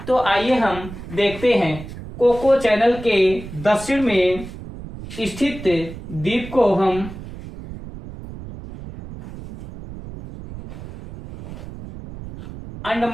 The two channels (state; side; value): noise; right; rumble, 12 dB below the sound